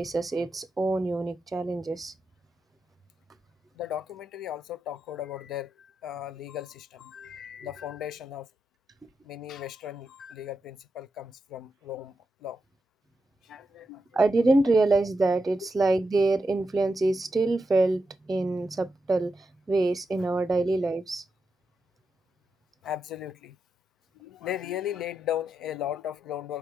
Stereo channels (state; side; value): normal; both; correlation 0.86